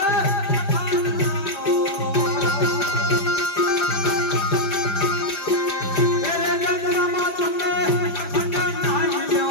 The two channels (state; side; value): late; right; 5.0 ms